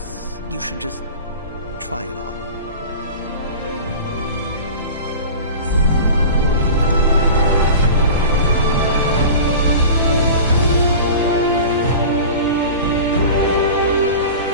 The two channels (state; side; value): inverted; both; correlation -0.35